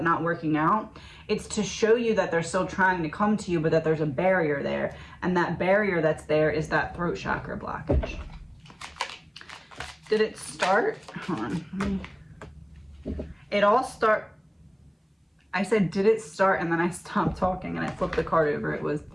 not working out, it's to show you that they're still trying to come to you, but that there's a barrier there, and that barrier that's there is that throat chakra blockage. Did it start? Hold on. It all I said, did it start? And then I stopped talking and I flipped the card over. It was,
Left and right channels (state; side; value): identical; both; correlation 1.00